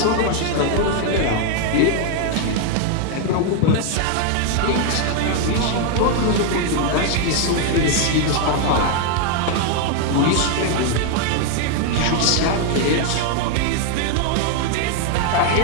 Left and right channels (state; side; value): different; both; correlation 0.01